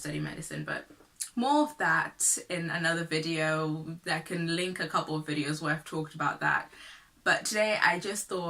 study medicine, but more of that in another video. I can link a couple of videos where I've talked about that. But today I just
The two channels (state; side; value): identical; both; correlation 1.00